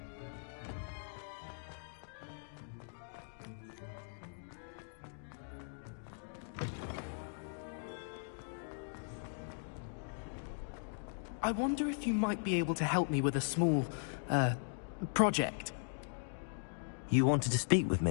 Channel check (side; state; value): right; silent; digital silence